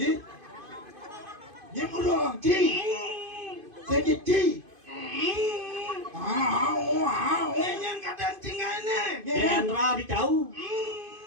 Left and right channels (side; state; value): left; late; 2.5 ms